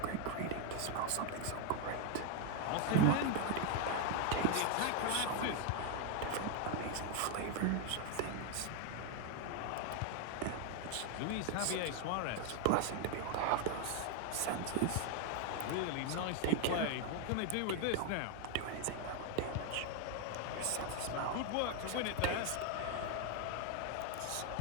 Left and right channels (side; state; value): both; different; correlation 0.01